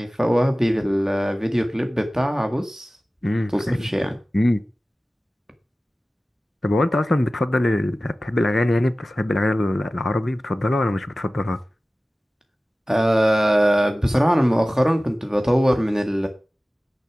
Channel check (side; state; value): both; normal; correlation 0.96